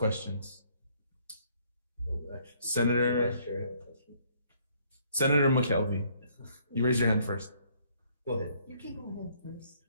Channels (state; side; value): inverted; both; correlation -0.64